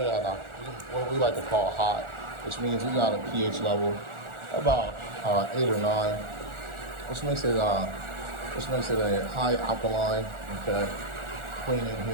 it at what we like to call hot, which means we got a pH level about 8 or 9, which makes it a high alkaline, okay, cleaning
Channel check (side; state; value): left; late; 1.4 ms